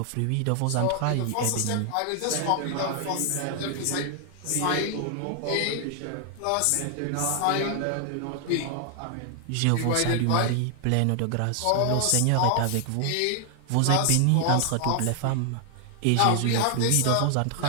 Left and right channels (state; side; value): different; both; correlation 0.00